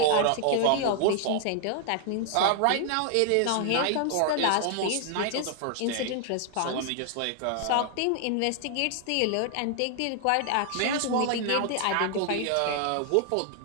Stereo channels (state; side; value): different; both; correlation 0.00